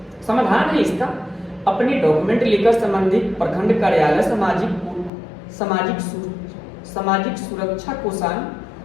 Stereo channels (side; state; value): right; drops out; at 5.1 s